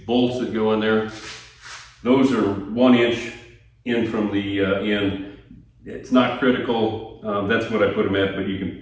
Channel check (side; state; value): both; identical; correlation 1.00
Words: bolts that go in there, those are 1 inch in from the end. It's not critical, that's what I put them at, but you can